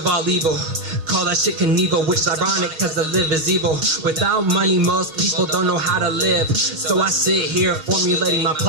all evil. Call that shit Knievel, which is ironic cause the live is evil. Without money, most people don't know how to live. So I sit here formulating my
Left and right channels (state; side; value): late; left; 6.2 ms